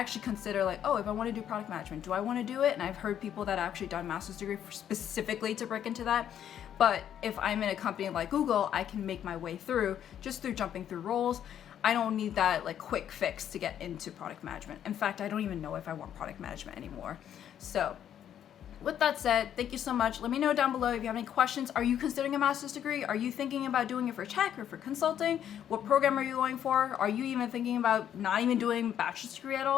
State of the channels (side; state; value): right; quieter; 9.9 dB